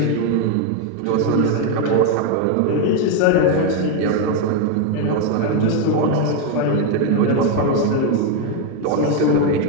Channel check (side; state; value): both; different; correlation 0.01